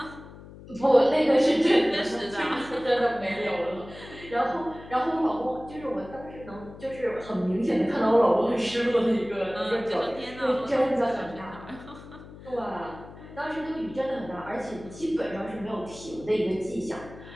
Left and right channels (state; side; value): noise; left; hum, 17 dB below the sound